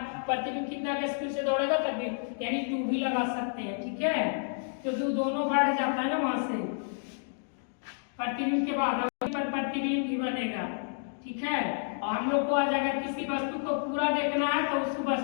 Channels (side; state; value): right; silent; digital silence